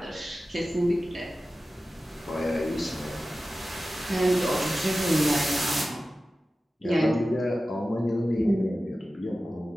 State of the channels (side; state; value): both; normal; correlation 0.95